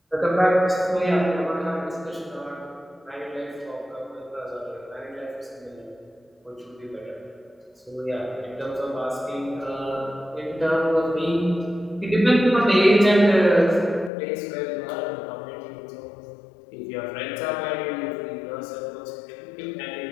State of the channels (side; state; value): right; drops out; at 14.1 s